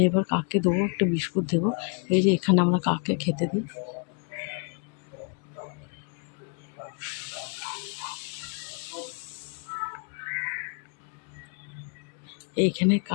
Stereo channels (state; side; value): quieter; right; 39.4 dB